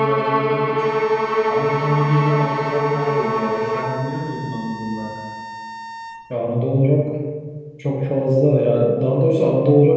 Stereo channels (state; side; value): identical; both; correlation 1.00